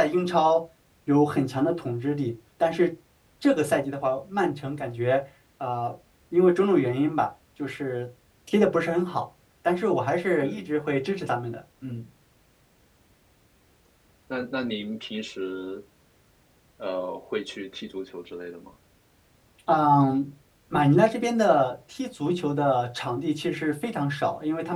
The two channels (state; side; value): identical; both; correlation 1.00